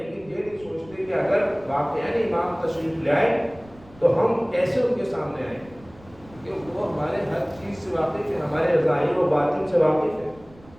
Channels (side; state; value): right; noise; rumble, 24 dB below the sound